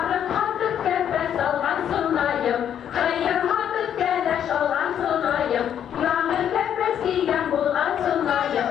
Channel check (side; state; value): right; quieter; 9.4 dB